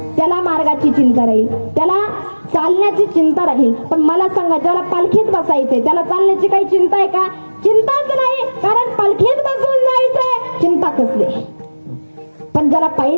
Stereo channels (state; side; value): inverted; both; correlation -1.00